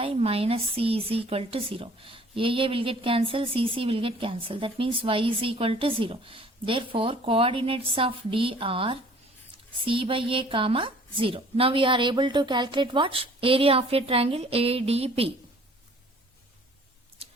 minus c is equal to 0. A will get cancelled, c will get cancelled. That means y is equal to 0. Therefore, coordinates of D are c by a comma 0. Now we are able to calculate what? Area of a triangle ADB.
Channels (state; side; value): normal; both; correlation 0.53